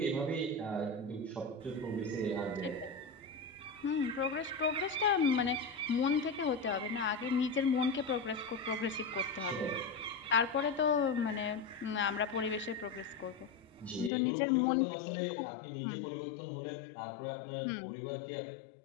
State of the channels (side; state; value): right; drops out; at 14.1 s